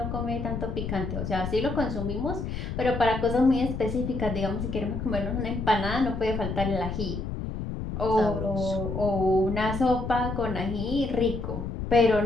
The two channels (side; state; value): left; noise; rumble, 5 dB below the sound